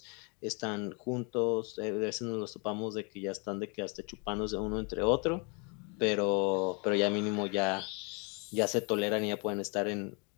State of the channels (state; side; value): quieter; right; 33.7 dB